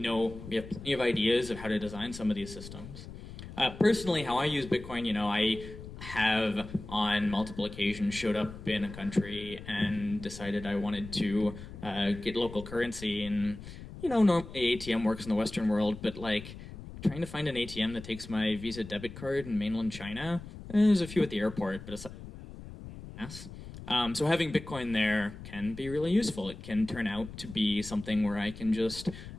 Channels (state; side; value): noise; left; rumble, 13 dB below the sound